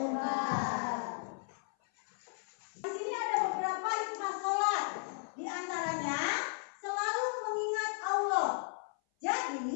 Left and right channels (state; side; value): silent; right; 54 dB below the other